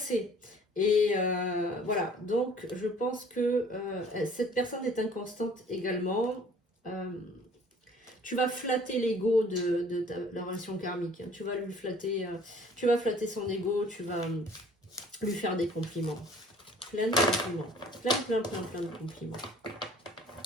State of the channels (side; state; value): both; normal; correlation 0.53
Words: Et voilà, donc je pense que cette personne est inconstante également. Tu vas flatter l'ego de la relation karmique. Hein. Tu vas lui flatter, tu vas flatter son ego, tu vas lui faire des compliments. Plein de compliments. Plein de compliments.